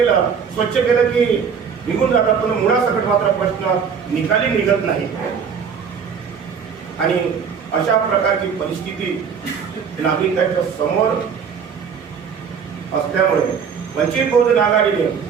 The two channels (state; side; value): quieter; left; 6.6 dB